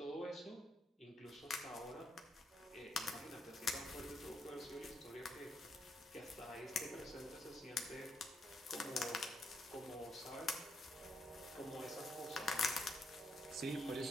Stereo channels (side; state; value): both; normal; correlation 0.75